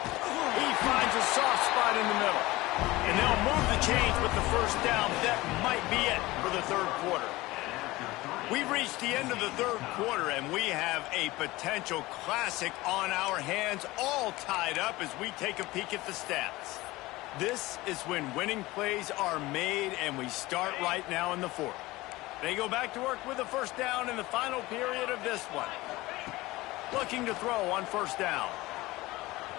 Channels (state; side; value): quieter; right; 19.6 dB